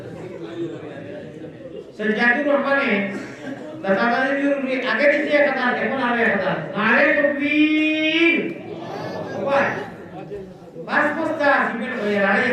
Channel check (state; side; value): identical; both; correlation 1.00